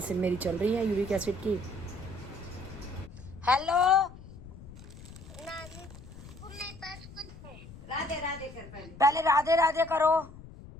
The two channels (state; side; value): noise; left; rumble, 16 dB below the sound